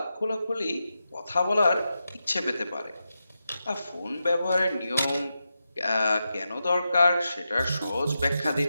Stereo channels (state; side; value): inverted; both; correlation -0.89